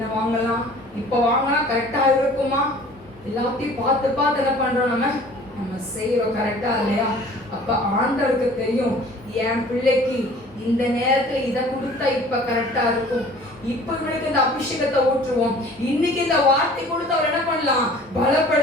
வாங்கலாம், இப்ப வாங்கினா கரெக்டா இருக்குமா? எல்லாத்தையும் பார்த்து பார்த்து என்ன பண்றோம், நம்ம செய்யறோம் கரெக்டா இல்லையா? அப்ப ஆண்டவருக்கு தெரியும், என் பிள்ளைக்கு இந்த நேரத்துல இதை கொடுத்தா இப்ப கரெக்டா இருக்கும், இப்ப இவனுக்கு இந்த அபிஷேகத்தை ஊற்றுவோம், இன்னைக்கு இந்த வார்த்தை கொடுத்து அவர் என்ன பண்ணலாம்,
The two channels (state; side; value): normal; both; correlation 0.49